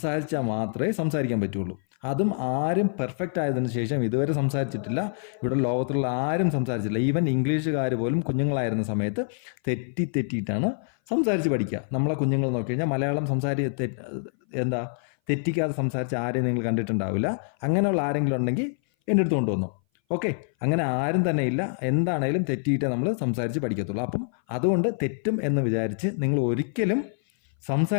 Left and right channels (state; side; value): silent; right; 58 dB below the other